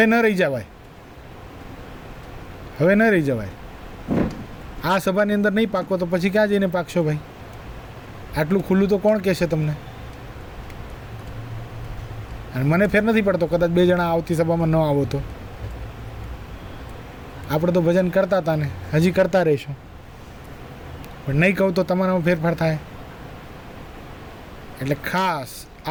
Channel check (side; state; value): both; identical; correlation 1.00